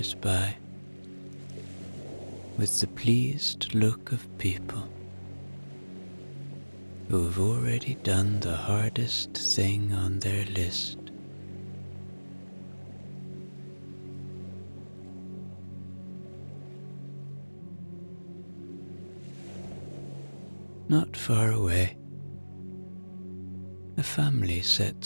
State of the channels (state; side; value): inverted; both; correlation -1.00